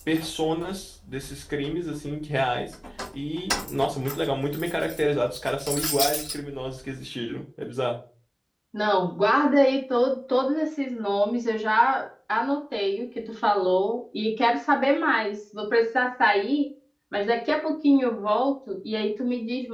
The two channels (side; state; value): both; identical; correlation 1.00